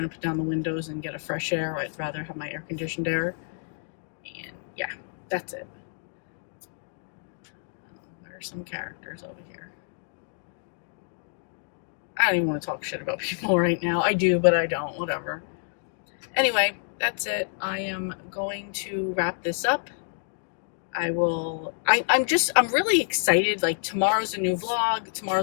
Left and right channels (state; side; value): silent; right; digital silence